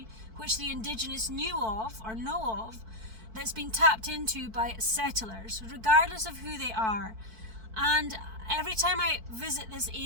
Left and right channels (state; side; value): late; left; 4.5 ms